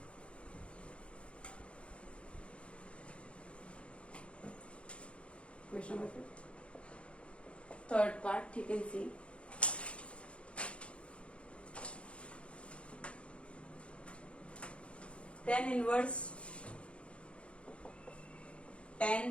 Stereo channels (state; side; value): late; right; 0.060 ms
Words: Question number 5th. Third part, you can see. Tan inverse